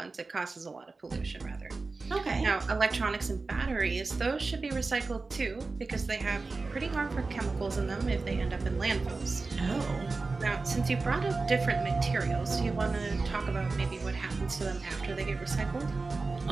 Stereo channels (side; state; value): left; quieter; 3.9 dB